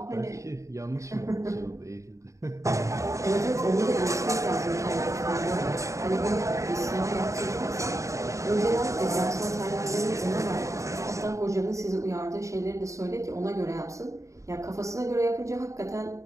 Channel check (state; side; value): late; left; 0.15 ms